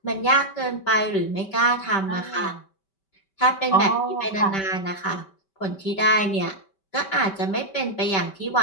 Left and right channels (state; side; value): late; right; 5.2 ms